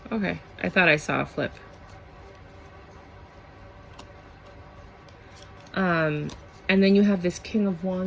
Okay, I thought I saw a flip. And then you have this King of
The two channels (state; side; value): identical; both; correlation 1.00